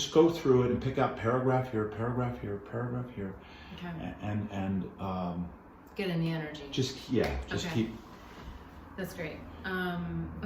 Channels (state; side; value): identical; both; correlation 1.00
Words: go through it and pick out paragraph here, paragraph here, paragraph here, okay. and get in the energy. Keep. That's great.